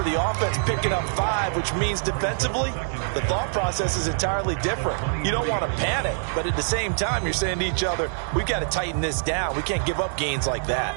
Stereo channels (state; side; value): silent; left; 62 dB below the other